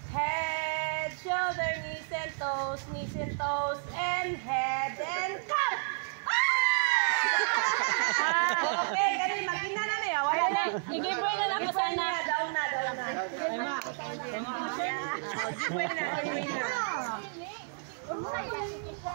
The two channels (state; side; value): silent; left; digital silence